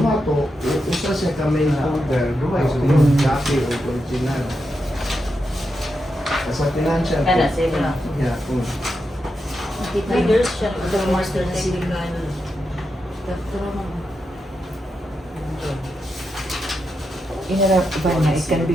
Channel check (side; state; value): both; normal; correlation 0.86